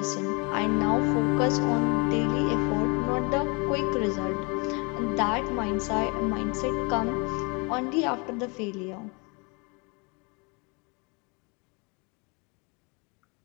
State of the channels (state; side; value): quieter; right; 31.1 dB